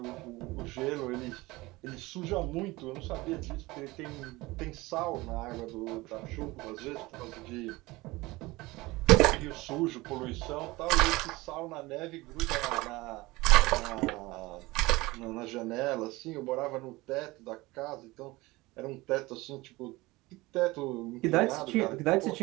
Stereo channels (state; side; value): quieter; left; 21.0 dB